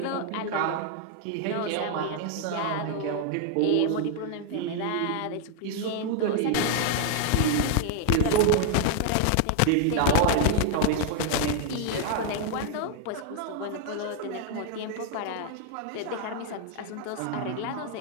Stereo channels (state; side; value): different; both; correlation 0.00